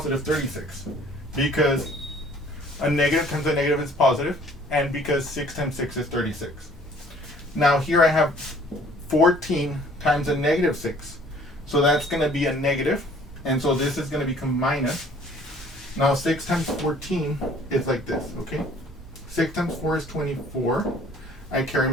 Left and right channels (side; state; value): both; normal; correlation 0.55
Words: 36, because a negative times a negative is positive, and because 6 times 6 is 36. Now here I have 14 times a negative 6, so that's going to be a negative, and so this is going to become minus. Now 6 times 14 is like this, okay? 6 times 4 is 24. I carry